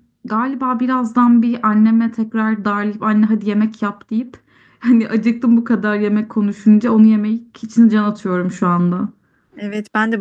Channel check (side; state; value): both; identical; correlation 1.00